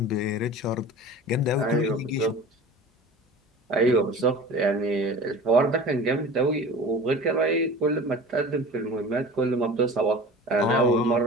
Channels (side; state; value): both; normal; correlation 0.37